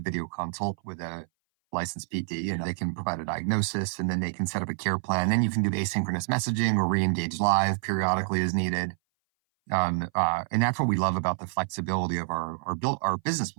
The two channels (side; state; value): left; silent; 58 dB below the other